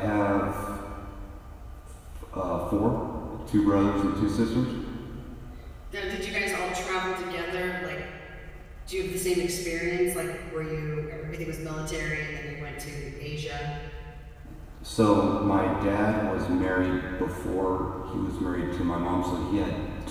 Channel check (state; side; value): identical; both; correlation 1.00